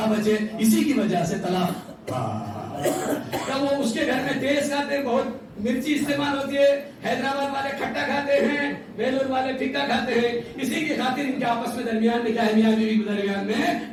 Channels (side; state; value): both; identical; correlation 1.00